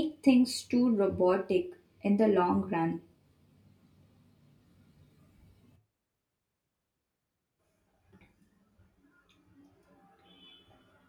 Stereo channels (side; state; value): both; identical; correlation 1.00